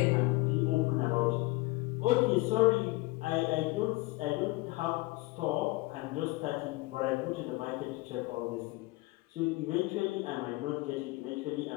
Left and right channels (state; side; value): quieter; right; 21.9 dB